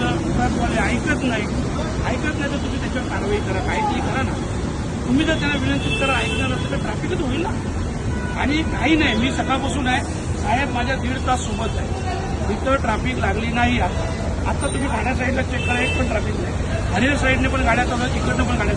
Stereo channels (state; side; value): identical; both; correlation 1.00